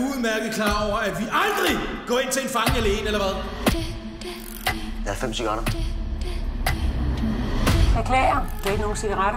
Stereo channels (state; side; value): identical; both; correlation 1.00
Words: klar over, at vi aldrig går ind til en fange alene, eller hvad? Jeg har 5 cigaretter. Beklager. Du har ikke nogen